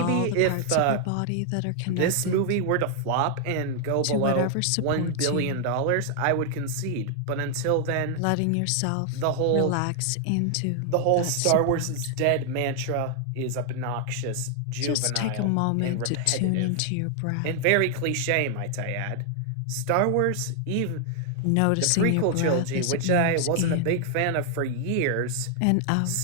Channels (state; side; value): different; both; correlation 0.00